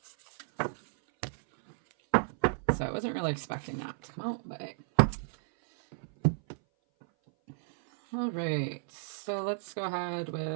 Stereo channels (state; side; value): silent; left; 56 dB below the other